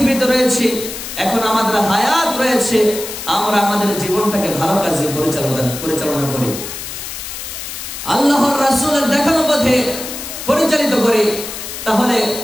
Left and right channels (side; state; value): left; noise; hiss, 8 dB below the sound